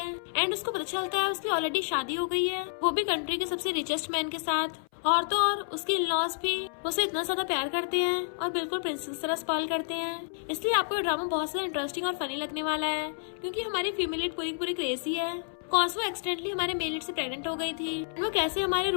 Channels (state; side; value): silent; right; 58 dB below the other